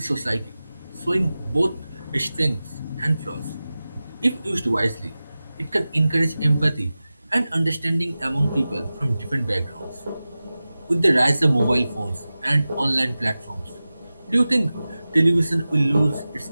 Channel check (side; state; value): both; inverted; correlation -0.96